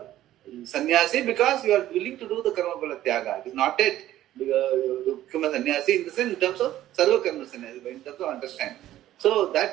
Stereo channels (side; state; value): left; quieter; 13.6 dB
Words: sannyasi because you are willing to do the karma phala tyaga. It is not yet to become a sannyasi in the sense in terms of sarva karma sannyasi, but in terms of understanding. So